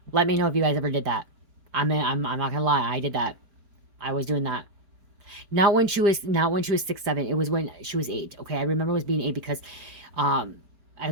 Let me know if you guys ever did that. I'm not gonna lie, I did that. I was doing that. Not when she was 6, 7. It was when she was 8. Okay, I remember it was being 8 because I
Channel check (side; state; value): left; late; 4.6 ms